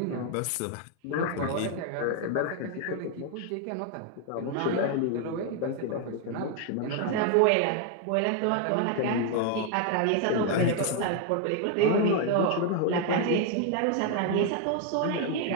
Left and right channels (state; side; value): different; both; correlation 0.00